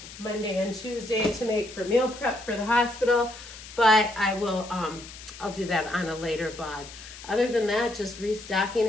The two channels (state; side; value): noise; left; hiss, 15 dB below the sound